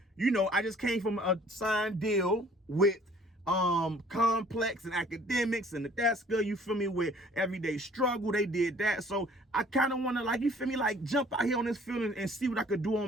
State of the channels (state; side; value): normal; both; correlation 0.55